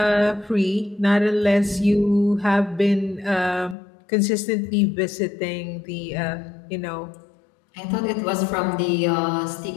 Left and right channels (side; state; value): right; drops out; at 3.8 s